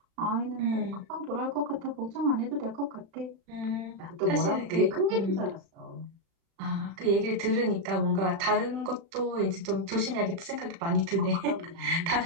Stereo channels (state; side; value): late; left; 36 ms